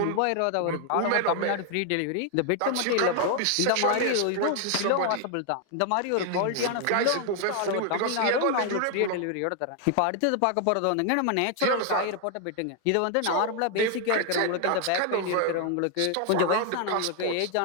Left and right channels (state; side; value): different; both; correlation 0.00